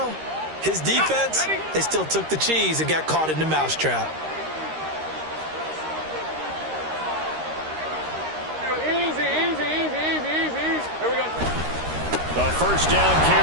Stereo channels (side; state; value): left; late; 13 ms